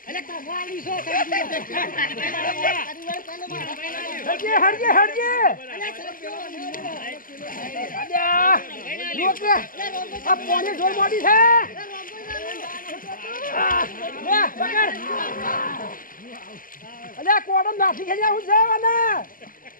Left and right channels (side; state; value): right; late; 0.41 ms